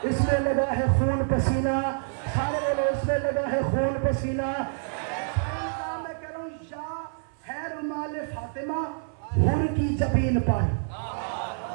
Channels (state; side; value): silent; left; 56 dB below the other